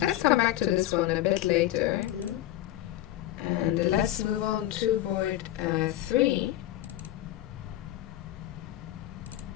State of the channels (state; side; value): quieter; right; 14.1 dB